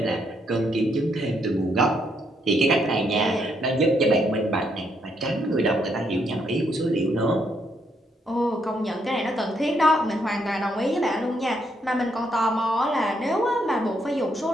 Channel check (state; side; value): normal; both; correlation 0.75